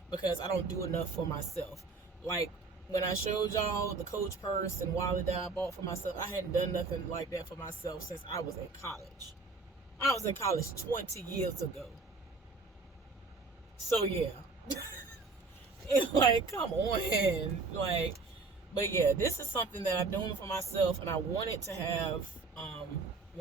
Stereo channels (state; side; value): quieter; left; 3.9 dB